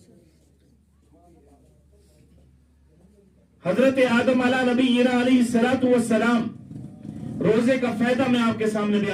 حضرت آدم علیہ نبینا علیہ الصلوۃ والسلام، روزے کا فائدہ میں آپ کے سامنے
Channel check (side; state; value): both; identical; correlation 1.00